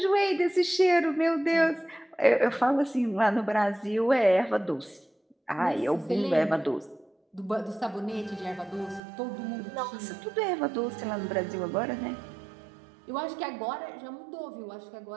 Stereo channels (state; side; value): drops out; left; at 9.0 s